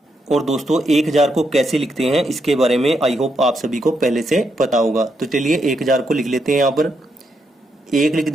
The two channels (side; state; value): both; normal; correlation 0.80